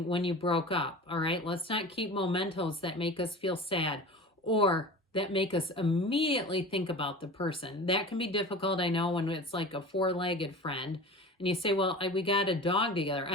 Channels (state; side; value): normal; both; correlation 0.35